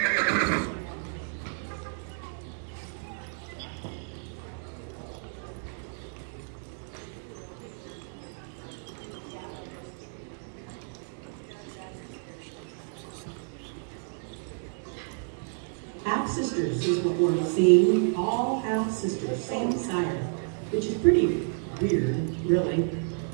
Half-sisters is what we're seeing, all half-sisters, same sire, which is pretty weird, really.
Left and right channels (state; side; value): silent; left; 58 dB below the other